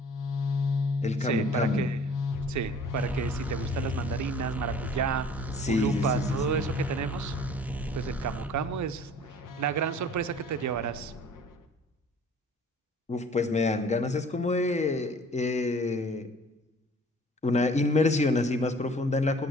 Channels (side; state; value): both; normal; correlation 0.50